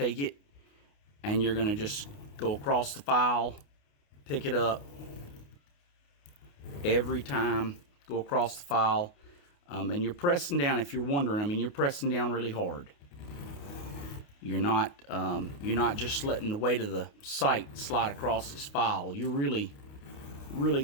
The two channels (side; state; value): right; late; 28 ms